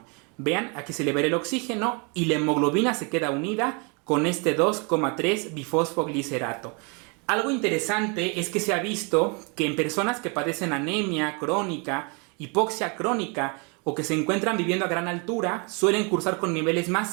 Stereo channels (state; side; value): quieter; left; 33.0 dB